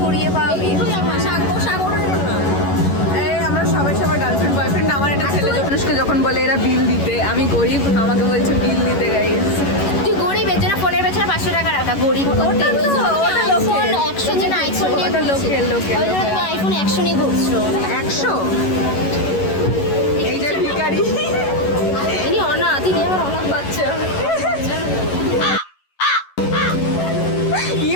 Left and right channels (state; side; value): late; right; 11 ms